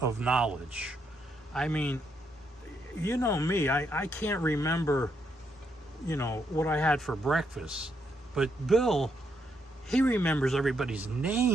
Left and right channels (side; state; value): both; normal; correlation 0.77